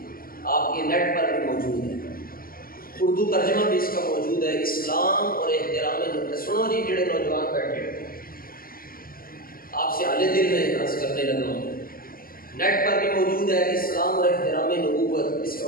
آپ کے نیٹ پر بھی موجود ہے اردو ترجمہ بھی اس کا موجود ہے اسلام اور احترام نبوت سنو جی جڑے نوجوان بیٹھے آپ سے اعلی دل میں عرض کرنے لگا ہوں نیٹ پر بھی موجود ہے اسلام اور احترام نبوت اس کا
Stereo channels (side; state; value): right; late; 0.42 ms